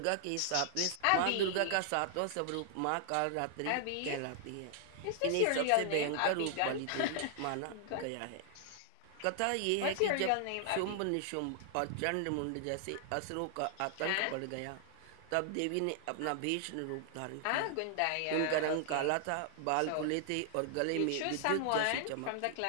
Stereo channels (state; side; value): different; both; correlation 0.00